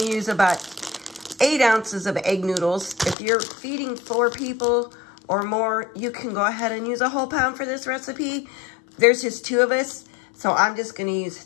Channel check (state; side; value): drops out; right; at 3.2 s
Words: use about 8 ounces of egg noodles. If you're feeding 4 people or more, you can go ahead and use a whole pound for this recipe. There's just 2 of us, so I'm just gonna use